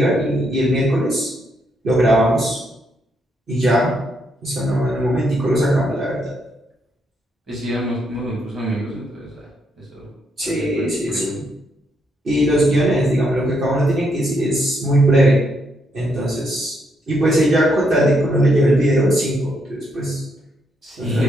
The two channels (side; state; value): both; normal; correlation 0.77